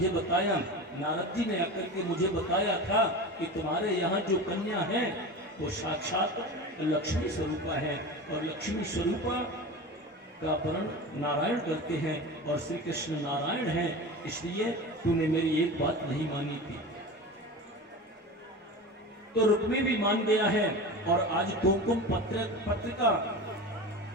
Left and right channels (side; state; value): both; normal; correlation 0.30